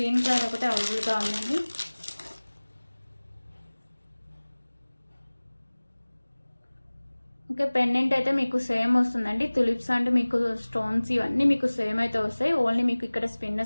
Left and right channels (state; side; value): inverted; both; correlation -1.00